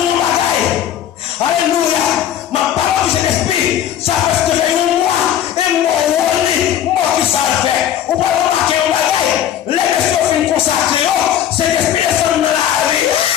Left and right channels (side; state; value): right; quieter; 10.5 dB